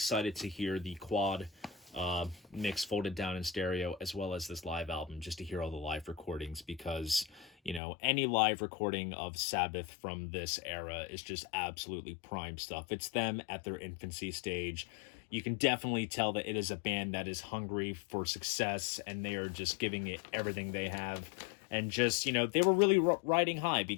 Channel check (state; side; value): drops out; right; at 7.8 s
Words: to hear the quad mix folded down in stereo, as well as this live album, just to hear all the live recordings, because, you know, any live recording of Sabbath from this era is just absolutely prime stuff. It's them at their infancy stage. You can definitely tell that it is a band that is hungry for success, and they are just giving it everything they have. And just, you know, they were really riding high,